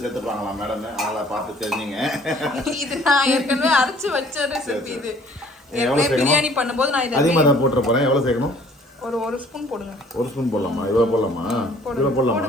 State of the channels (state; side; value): normal; both; correlation 0.56